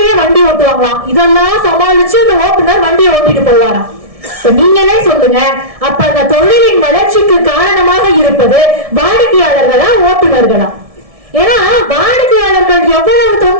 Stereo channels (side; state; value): left; late; 1.7 ms